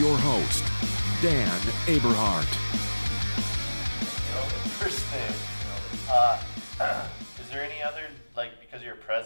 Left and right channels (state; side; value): inverted; both; correlation -1.00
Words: host, Dan Aberhart. First thing, is there any other, because you're